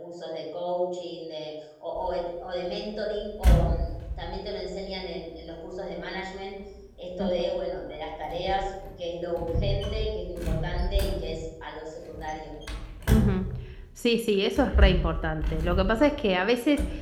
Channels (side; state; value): both; identical; correlation 1.00